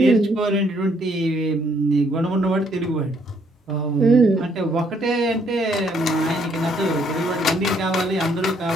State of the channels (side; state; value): both; normal; correlation 0.68